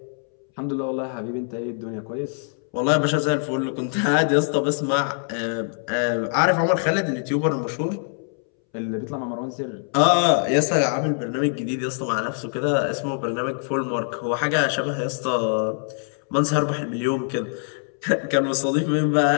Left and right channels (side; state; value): right; silent; 63 dB below the other